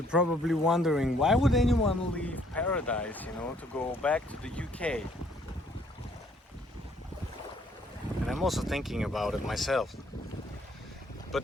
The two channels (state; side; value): normal; both; correlation 0.64